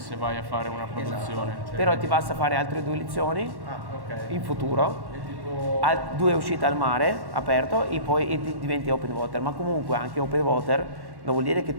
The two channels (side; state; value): left; late; 1.1 ms